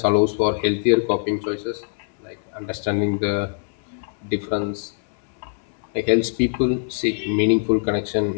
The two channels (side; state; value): right; silent; 64 dB below the other